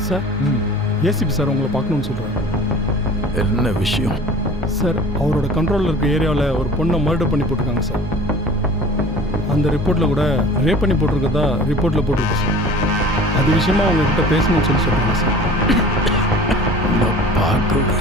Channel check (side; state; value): both; normal; correlation 0.44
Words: சார், ஏசிபி சார் உங்களை பார்க்கணும்னு சொல்கிறாங்க. என்ன விஷயம்? சார், அவரோட கண்ட்ரோலில் இருக்க ஏரியாவில் ஒரு பொண்ணை மர்டர் பண்ணி போட்டிருக்காங்க சார். அந்த ரிப்போர்ட்டில் கூட ரேப் பண்ணி போட்டிருக்கதா ரிப்போர்ட்டில் போட்டிருக்கு சார். அது விஷயமா உங்ககிட்ட பேசணும்னு சொல்கிறாங்க சார். நான் பார்க்க